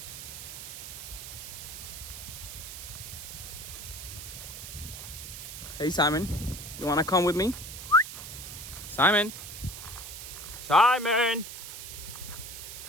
Hey Simon, you wanna come with me? Simon! Simon!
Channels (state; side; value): noise; right; hiss, 10 dB below the sound